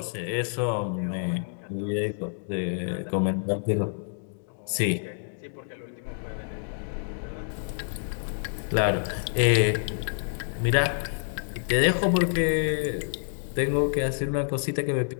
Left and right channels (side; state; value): right; silent; digital silence